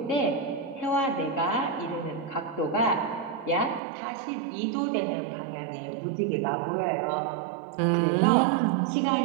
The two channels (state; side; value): drops out; left; at 3.8 s